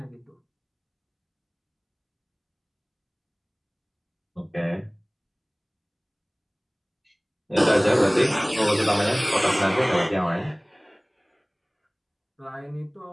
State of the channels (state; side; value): identical; both; correlation 1.00